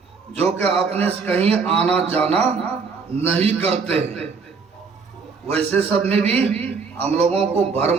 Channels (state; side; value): quieter; left; 5.1 dB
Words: जो कि अपने से कहीं आना जाना नहीं करते हैं। वैसे सब में भी हम लोगों को